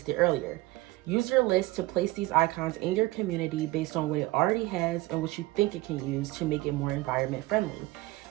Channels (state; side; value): quieter; left; 19.4 dB